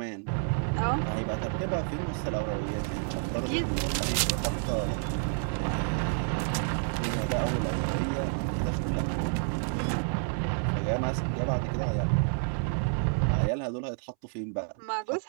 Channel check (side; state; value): left; silent; 58 dB below the other